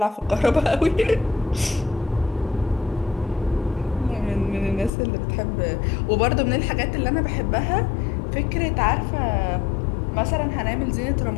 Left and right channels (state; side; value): drops out; right; at 4.9 s